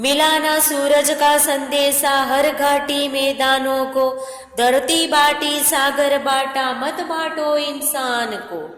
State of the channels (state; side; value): identical; both; correlation 1.00